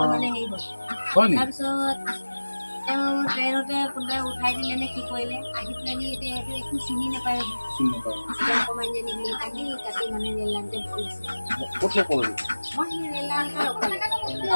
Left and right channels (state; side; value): inverted; both; correlation -1.00